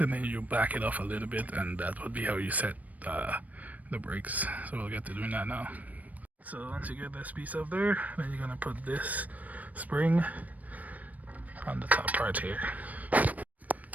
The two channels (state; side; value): late; left; 0.074 ms